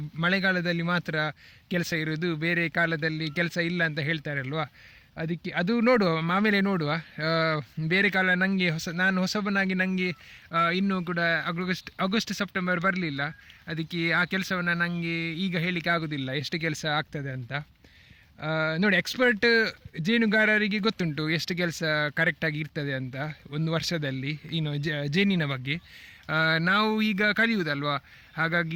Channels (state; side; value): identical; both; correlation 1.00